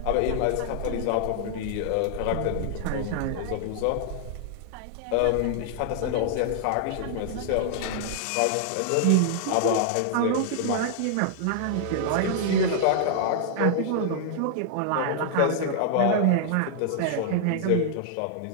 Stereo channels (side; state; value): both; different; correlation -0.01